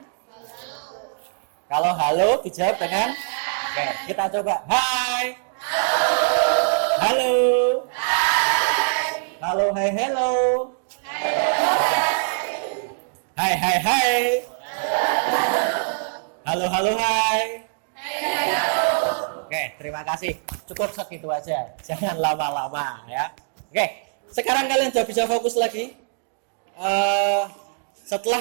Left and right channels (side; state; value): left; silent; digital silence